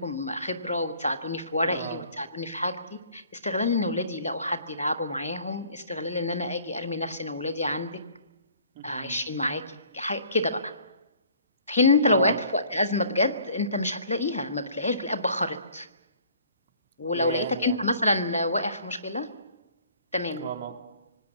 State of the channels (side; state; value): both; inverted; correlation -0.55